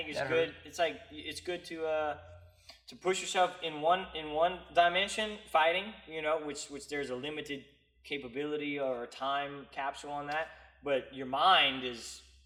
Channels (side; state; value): both; identical; correlation 1.00